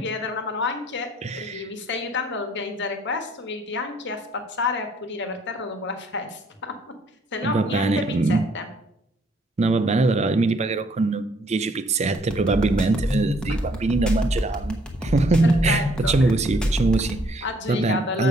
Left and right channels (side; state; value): both; normal; correlation 0.64